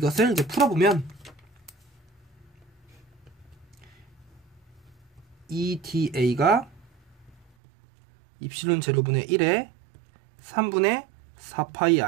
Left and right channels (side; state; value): left; drops out; at 7.5 s